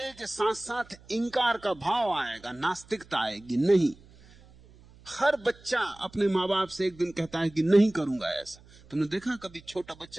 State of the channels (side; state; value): right; noise; hum, 25 dB below the sound